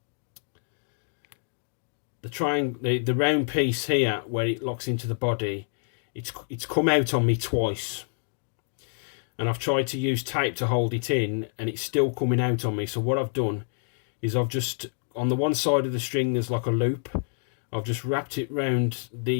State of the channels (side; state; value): right; silent; digital silence